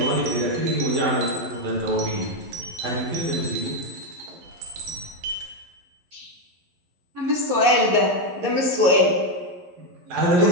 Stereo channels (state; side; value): late; left; 11 ms